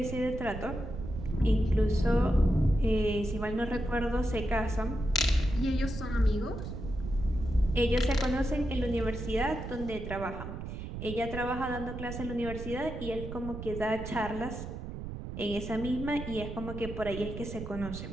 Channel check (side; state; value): right; noise; rumble, 8 dB below the sound